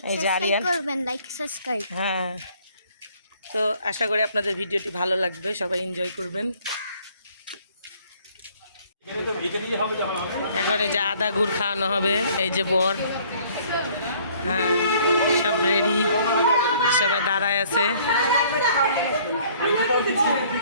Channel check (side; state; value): both; inverted; correlation -0.58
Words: এই যে আরিয়ান, হ্যাঁ। তো আশা করি আপনাদের ভিডিওটি ভালো লাগবে, সবাই এনজয় করবেন। এখন এই যে আদা গুড় খাওয়ানো হবে, এই যে বর, হ্যাঁ সব রেডি, সবাই দাঁড়ায় আছে।